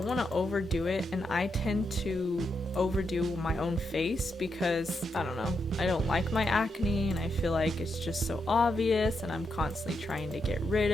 want to overdo it, and I tend to overdo my own face because, I don't know, I don't like my acne and I feel like it's just so obvious and I'm constantly trying to get rid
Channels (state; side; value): normal; both; correlation 0.83